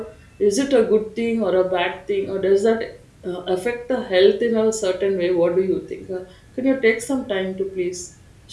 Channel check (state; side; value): identical; both; correlation 1.00